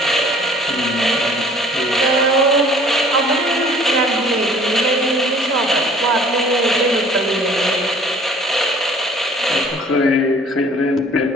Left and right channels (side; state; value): both; normal; correlation 0.52